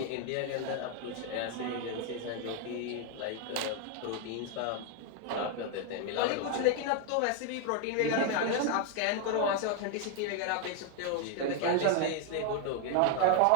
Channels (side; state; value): both; different; correlation 0.01